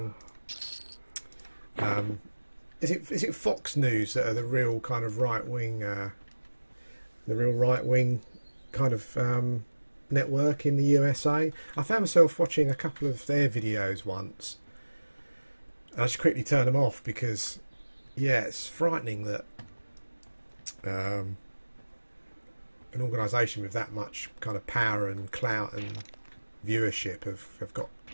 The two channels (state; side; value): inverted; both; correlation -1.00